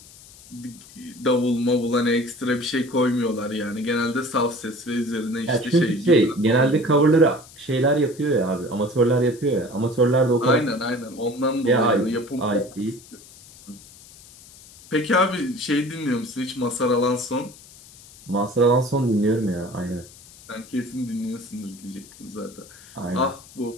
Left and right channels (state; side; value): noise; left; hiss, 21 dB below the sound